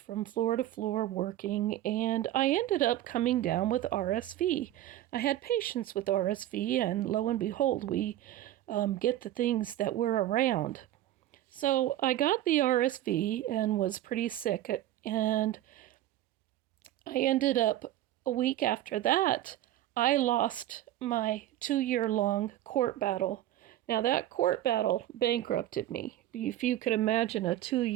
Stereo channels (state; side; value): quieter; left; 13.6 dB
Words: floor to floor working, and I ended up coming down with RSV. I had patients with RSV, and lo and behold, we get the things that we're around. So I got the RSV and was pretty sick, and I ended up a week after that, I lost my 2-year-long court battle. Now, that court battle bankrupted me. If you could imagine a